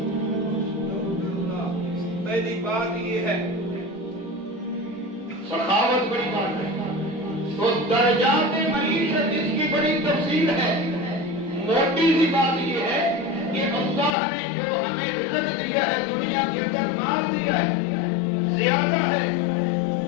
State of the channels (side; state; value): right; drops out; at 14.2 s